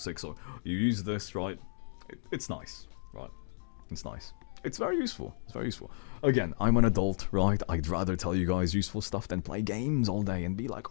So you use this, right? It's nice, right? It's nice. It's very useful. It's very useful. Again, I'm an adult, right? I'd rather tell you guys useful stuff than play games all day and be like,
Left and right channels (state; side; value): silent; right; digital silence